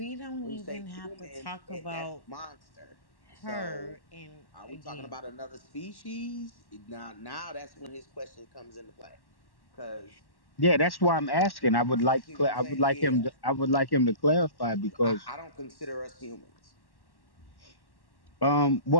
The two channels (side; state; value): right; late; 1.1 ms